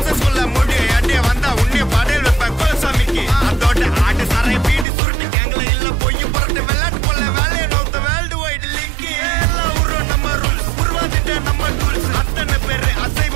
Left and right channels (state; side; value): drops out; left; at 4.9 s